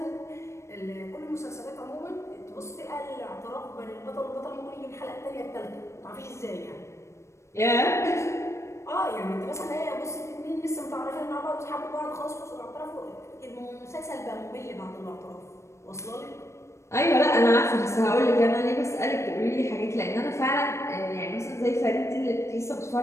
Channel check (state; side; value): late; right; 0.14 ms